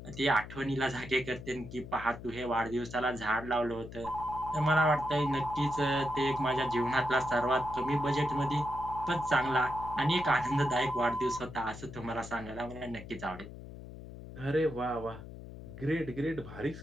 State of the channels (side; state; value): left; noise; hum, 13 dB below the sound